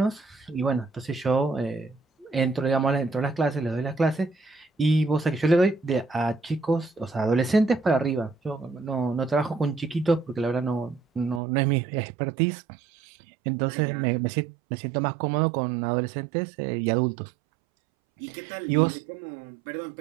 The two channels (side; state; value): left; drops out; at 11.4 s